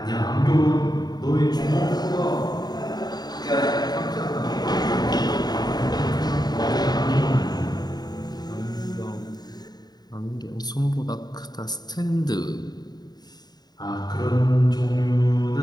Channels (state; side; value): late; right; 0.20 ms